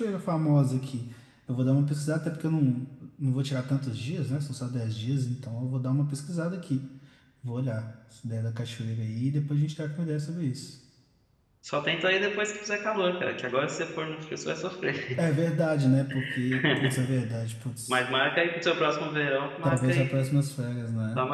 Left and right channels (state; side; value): identical; both; correlation 1.00